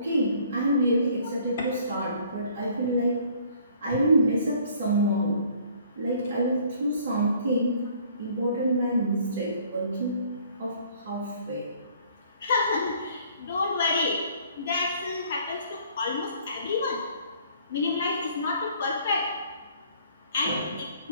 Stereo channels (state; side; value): inverted; both; correlation -0.57